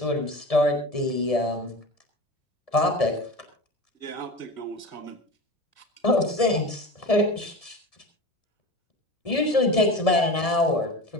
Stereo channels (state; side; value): late; right; 1.7 ms